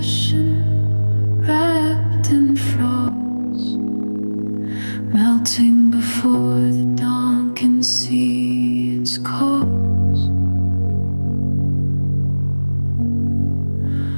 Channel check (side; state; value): both; inverted; correlation -1.00